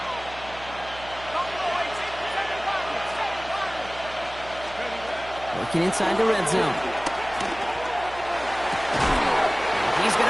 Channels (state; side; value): noise; right; hum, 17 dB below the sound